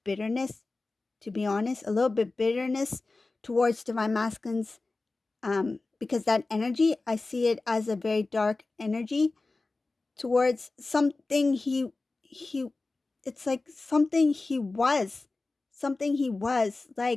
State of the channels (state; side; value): quieter; right; 3.4 dB